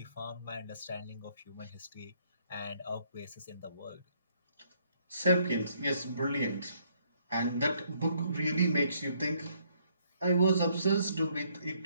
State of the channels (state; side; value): inverted; both; correlation -0.68